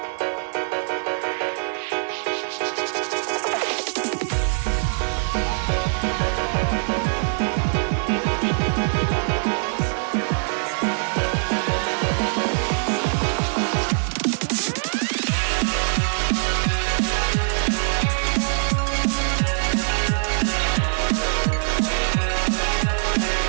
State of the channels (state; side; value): silent; left; digital silence